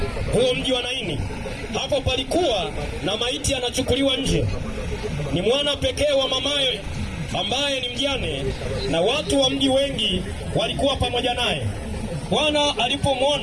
huo, mji wa Naini. Hapo palikuwa na maiti anachukuliwa nje, ni mwana pekee wa mamaye ambaye ni mjane, na watu wa mji wengi walikuwa pamoja naye. Bwana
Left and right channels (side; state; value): both; identical; correlation 1.00